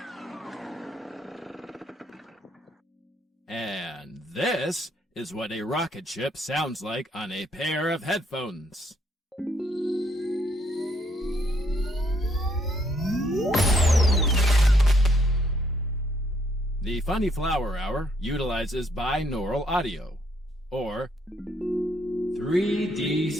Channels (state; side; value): normal; both; correlation 0.70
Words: And this is what a rocket ship sounds like on a pair of headphones. The Funny Flower Hour utilizes binaural audio, or 3D